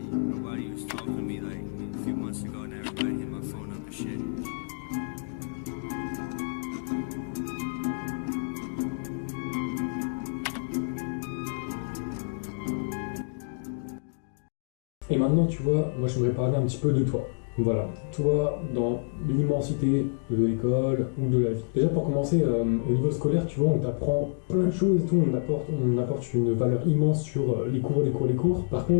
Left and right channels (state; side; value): silent; right; digital silence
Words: was talking to me like a few months ago, and everybody hit my phone up and shit. Et maintenant, tu vois, moi j'aimerais parler un petit peu de toi. Voilà, toi, dans l'immensité de l'école ou de la vie. Déjà pour commencer, au niveau scolaire, tu vois, on t'apprend plein de choses et tout, on apporte une valeur immense sur les cours. Par